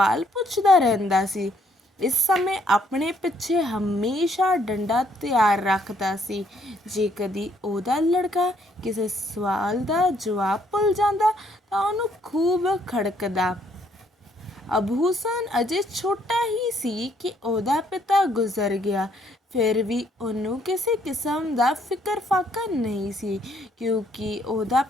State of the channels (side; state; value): both; normal; correlation 0.68